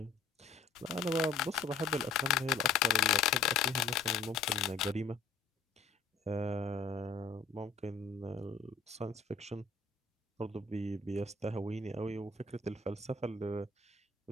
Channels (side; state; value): right; quieter; 4.6 dB